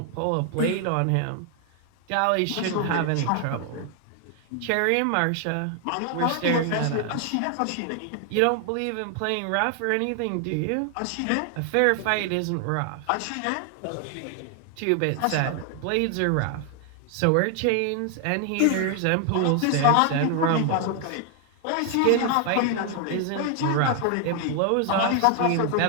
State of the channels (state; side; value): different; both; correlation 0.00